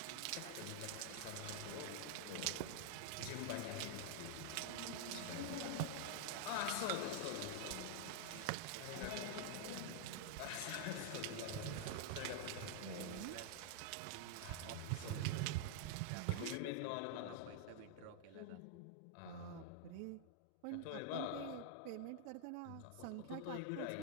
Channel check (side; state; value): both; different; correlation 0.00